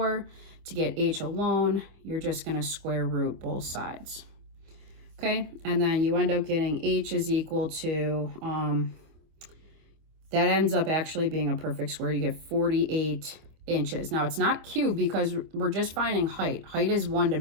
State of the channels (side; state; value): left; late; 25 ms